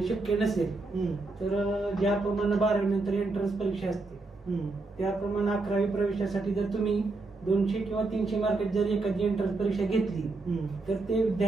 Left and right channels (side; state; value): left; quieter; 3.4 dB